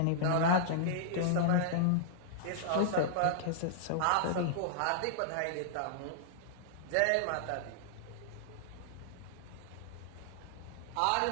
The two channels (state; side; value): different; both; correlation -0.01